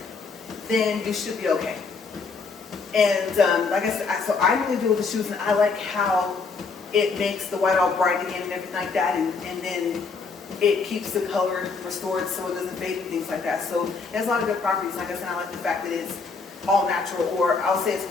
then you should be okay. And like I said, so I really do with the shoes, and I like how it makes the white all bright again and everything like that, and then it keeps the color restored so it doesn't fade and things like that. So it has a lot of good properties. Like I said, I like the fact that it's all natural, or I'll say as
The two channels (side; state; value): right; quieter; 4.7 dB